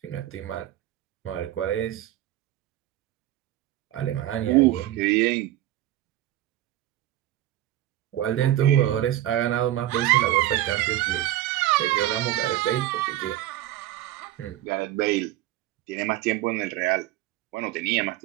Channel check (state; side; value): quieter; left; 14.0 dB